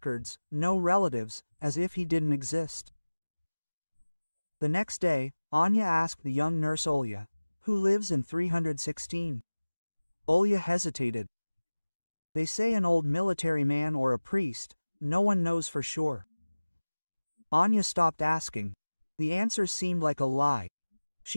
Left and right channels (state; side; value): inverted; both; correlation -1.00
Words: no relatives, as if he didn't exist. The next day, Anya asked the young nurse Olya, "Who lives in 316? Olya hesitated. "They say an old military man or a priest, no one knows for sure." Anya stopped asking. The answers seemed like a lie.